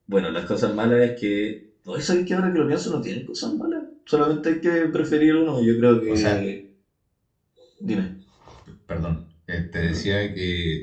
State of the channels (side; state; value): both; identical; correlation 1.00